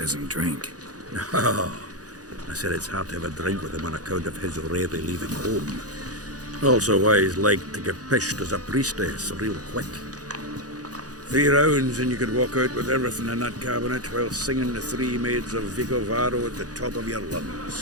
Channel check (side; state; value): left; late; 0.67 ms